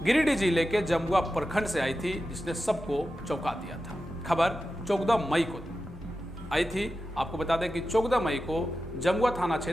गिरिडीह जिले के जमुआ प्रखंड से आई थी, जिसने सबको चौंका दिया था। खबर 14 मई को आई थी। आपको बता दें कि 14 मई को जमुआ थाना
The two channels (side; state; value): both; normal; correlation 0.92